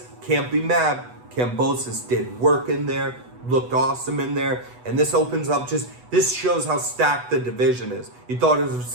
can't be mad. Kambosas did work in there, looked awesome in there, and this opens up this shows how stacked the division is. You thought it was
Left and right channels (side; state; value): left; late; 8.1 ms